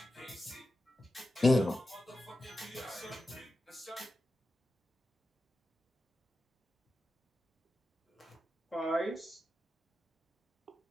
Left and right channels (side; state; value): both; normal; correlation 0.91